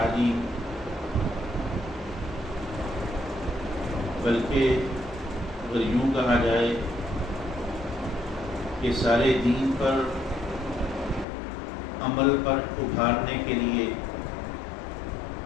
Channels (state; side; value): drops out; right; at 11.2 s